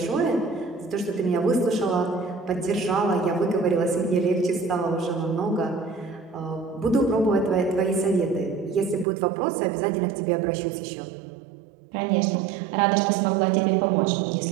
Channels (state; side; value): drops out; left; at 9.1 s